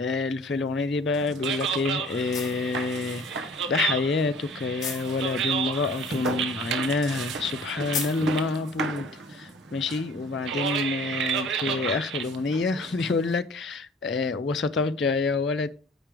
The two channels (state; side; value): normal; both; correlation 0.49